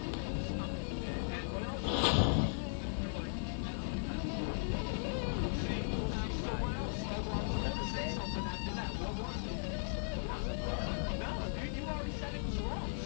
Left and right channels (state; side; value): silent; right; digital silence